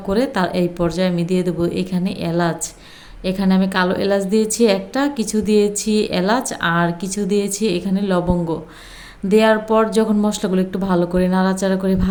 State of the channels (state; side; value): identical; both; correlation 1.00